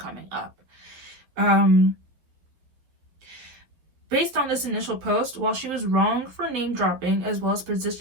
up? Based on this initial post, while she was wrong for name dropping, as well as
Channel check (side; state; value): left; late; 11 ms